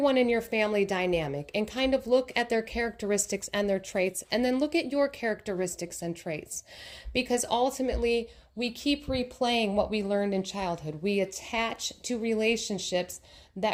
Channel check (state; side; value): identical; both; correlation 1.00